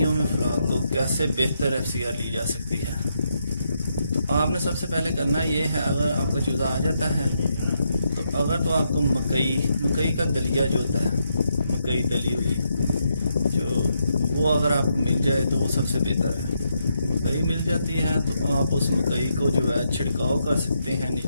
में फ्लॉक को कैसे बेहतर FCR ली जा सकती है। तो आपने सबसे पहले करना ये है, अगर आपका चूज़ा आ जाता है तो आपको मकई का दलिया जो होता है, मकई दली हुई जो वो अगर आपको मिल जाए तो वो सबसे बेहतर है। मकई मिल जाती है तो आप उस मकई को जो है छिड़काव कर सकते हैं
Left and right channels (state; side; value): inverted; both; correlation -0.80